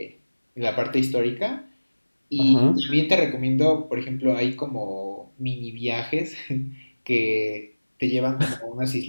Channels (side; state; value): both; inverted; correlation -1.00